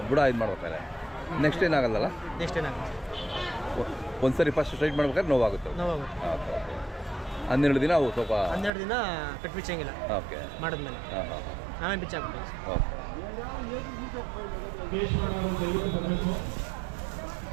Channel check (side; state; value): left; drops out; at 8.7 s